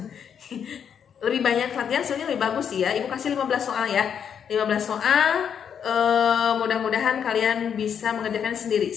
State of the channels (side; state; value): right; quieter; 7.9 dB